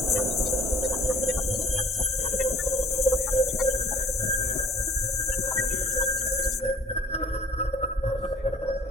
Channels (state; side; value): normal; both; correlation 0.53